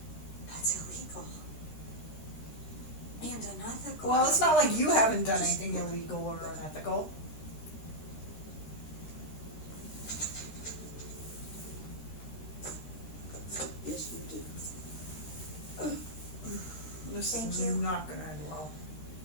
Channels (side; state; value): right; late; 13 ms